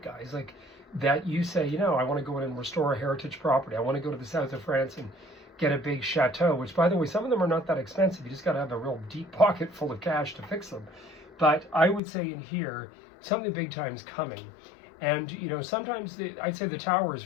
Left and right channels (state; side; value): drops out; right; at 12.0 s